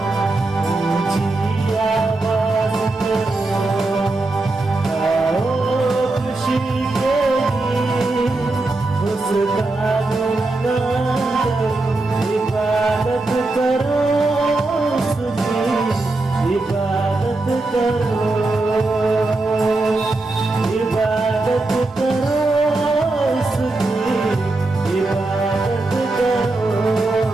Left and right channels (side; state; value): left; quieter; 3.1 dB